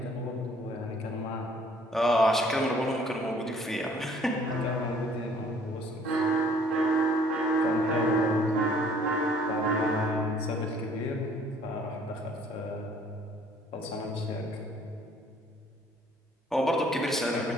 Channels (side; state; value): both; normal; correlation 0.58